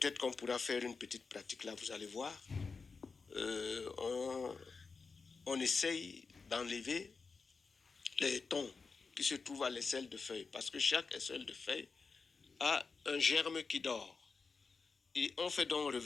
qu'on pourra faire une petite pratique là, vous allez voir. On essaye d'enlever les tons qui se trouvent à l'aisselle de feuille. Parce que chaque aisselle de feuille a un germe qui dort. Et on fait donc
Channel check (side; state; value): right; quieter; 4.7 dB